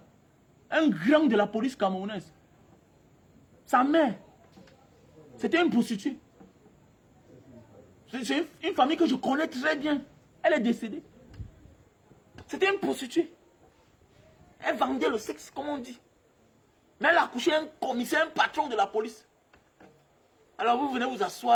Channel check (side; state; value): both; identical; correlation 1.00